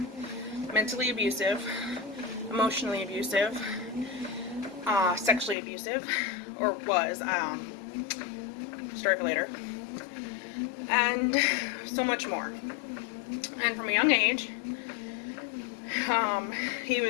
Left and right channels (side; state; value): right; drops out; at 5.6 s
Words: mentally abusive, emotionally abusive, sexually abusive, or was, story for later, and so much more. And from a young age, he